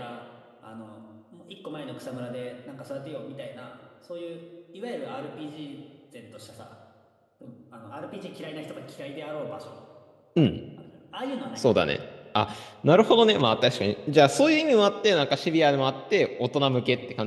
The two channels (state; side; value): identical; both; correlation 1.00